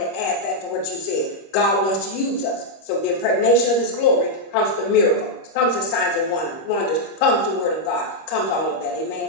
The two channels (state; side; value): late; right; 26 ms